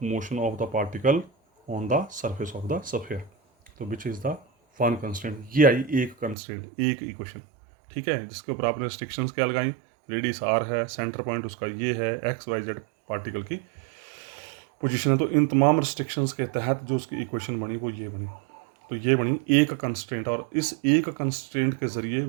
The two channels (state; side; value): drops out; left; at 6.4 s